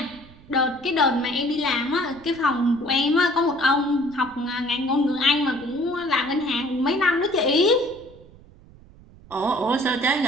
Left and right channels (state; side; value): noise; right; rumble, 23 dB below the sound